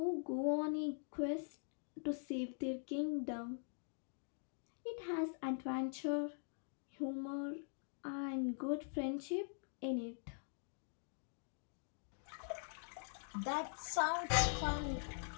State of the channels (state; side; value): silent; right; digital silence